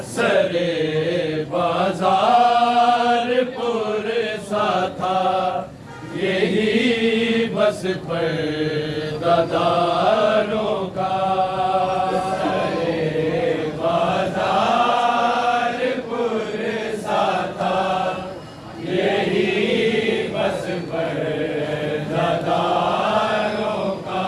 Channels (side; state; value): both; identical; correlation 1.00